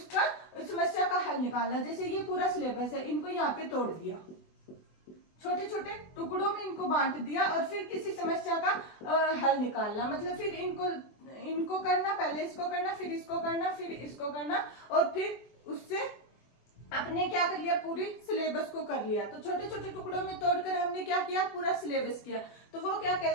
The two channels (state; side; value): late; right; 24 ms